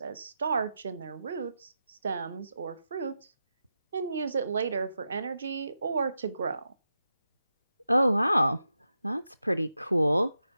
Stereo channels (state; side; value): inverted; both; correlation -0.89